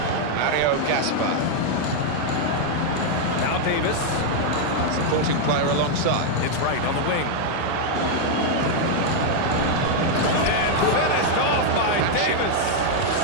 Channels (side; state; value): both; different; correlation 0.00